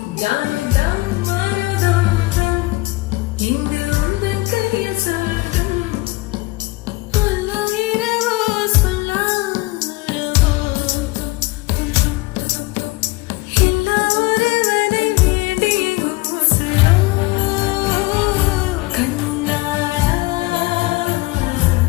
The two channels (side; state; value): right; quieter; 21.6 dB